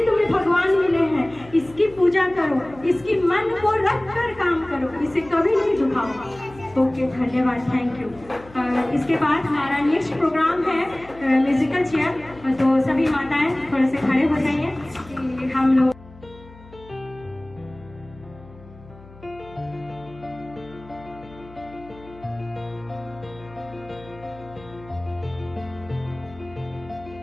तुम्हें भगवान मिले हैं। इसकी पूजा करो, इसकी मन को रख कर काम करो, इसे कभी नहीं दुखाओ। ओके, धन्यवाद, थैंक यू। इसके बाद हमारा नेक्स्ट प्रोग्राम है म्यूजिकल चेयर। तो सभी माताएं थोड़े से खड़े हो जाइए कि हम लोग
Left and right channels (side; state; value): left; noise; hum, 21 dB below the sound